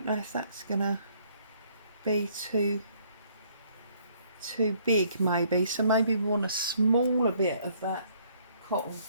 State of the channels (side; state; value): both; inverted; correlation -0.63